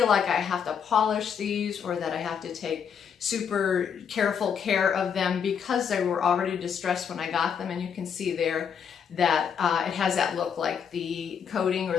like I have to polish these or that I have to take super careful care of them because they were already distressed when I got them. And you can see there that it has that look like the coating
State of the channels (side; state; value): right; quieter; 7.3 dB